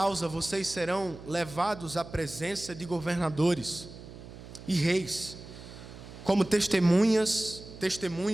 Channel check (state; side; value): noise; right; hum, 15 dB below the sound